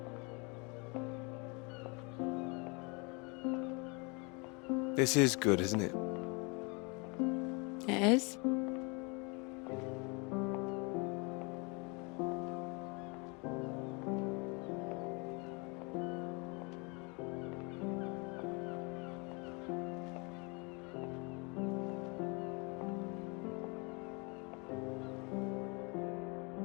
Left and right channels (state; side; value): quieter; right; 30.7 dB